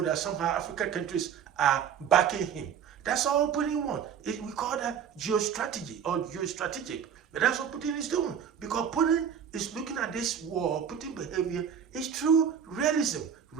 that somehow African countries are backing him. That's all Putin wants. We call that geostrategy or geostrategic. But that's what Putin is doing, because Putin is looking at this war, Putin behavior is true realism,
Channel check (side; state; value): left; quieter; 8.0 dB